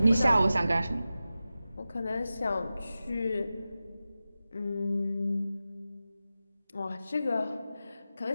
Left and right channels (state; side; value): inverted; both; correlation -0.93